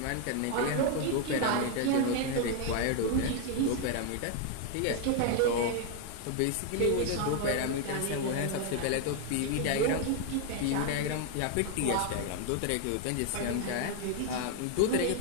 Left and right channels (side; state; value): both; different; correlation 0.00